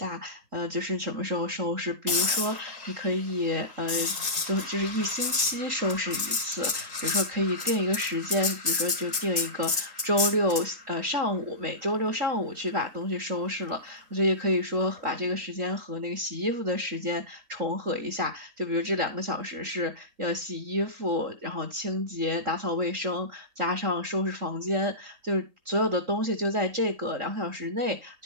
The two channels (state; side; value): late; left; 3.8 ms